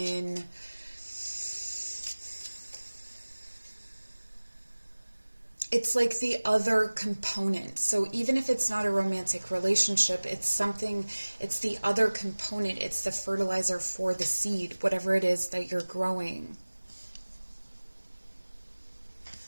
it's like the other component. So even if it's not a romantic relationship, it's the other component. It's the fertilizer for the seed, whatever it is that you're growing.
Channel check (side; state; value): both; inverted; correlation -1.00